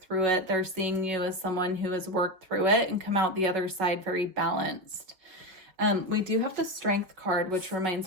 it, they're seeing you as someone who has worked through it and come out the other side very balanced. We do have the Strength card, which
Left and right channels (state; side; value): late; left; 5.1 ms